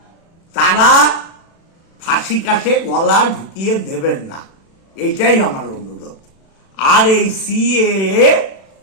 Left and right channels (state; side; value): late; right; 36 ms